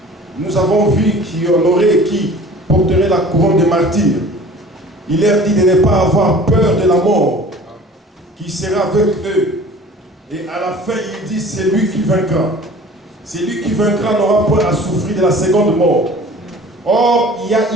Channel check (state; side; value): normal; both; correlation 0.45